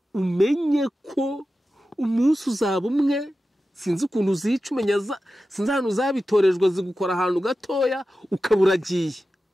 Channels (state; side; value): normal; both; correlation 0.93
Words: umenye ko umunsi uzaba umwe. Sinzi ukuntu uzica umenya sinzi ahantu uzabitorejwe zigukora ahantu gatoya ukaburagiye.